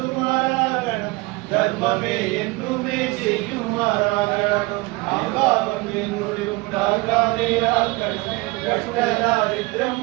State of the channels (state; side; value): quieter; left; 24.0 dB